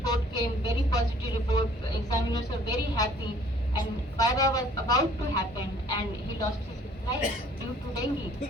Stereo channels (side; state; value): both; normal; correlation 0.56